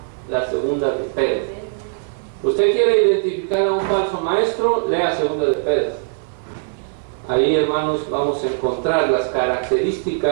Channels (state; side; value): silent; left; 55 dB below the other